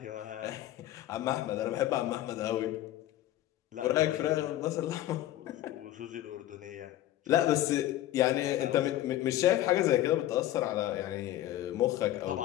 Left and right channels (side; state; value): right; quieter; 14.1 dB